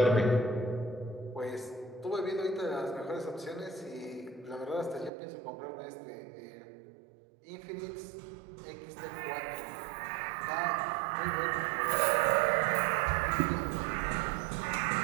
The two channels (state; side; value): drops out; left; at 5.1 s